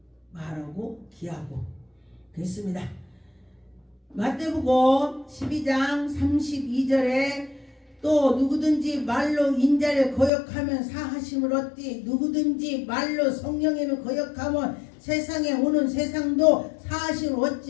말하고 기하고 그랬습니다. 마태복음 12장 32절에 또 누구든지 말로 인자를 거역하면 사하심을 얻디 누구든지 말로 성령님을 거역하면 세상에 오는 세상도 사하심을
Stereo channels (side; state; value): right; drops out; at 10.3 s